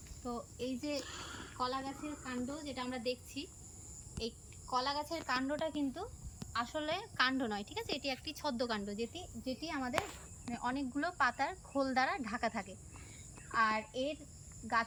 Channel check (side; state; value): both; identical; correlation 1.00